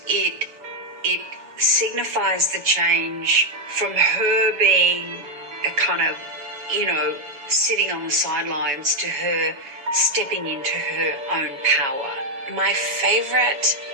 it signifies the change from her being a kind of, sitting on the sidelines to her stepping into her own power. My favourite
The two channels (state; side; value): late; left; 7.2 ms